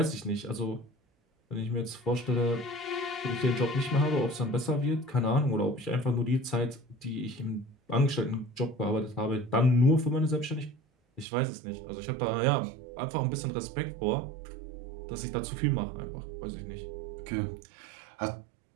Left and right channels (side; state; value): left; drops out; at 11.2 s